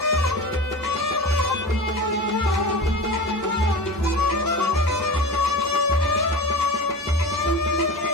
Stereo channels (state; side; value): normal; both; correlation 0.31